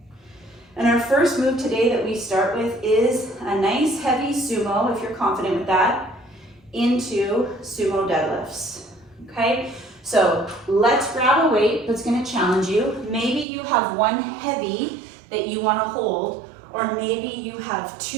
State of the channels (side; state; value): left; drops out; at 13.5 s